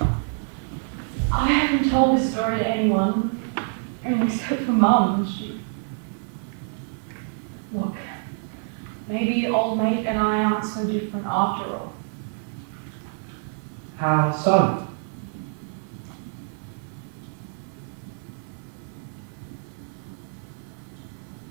I haven't told this story to anyone. I mean, except for Mum. Look, maybe old mate and I aren't so different after all. How so?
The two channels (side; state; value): left; silent; 61 dB below the other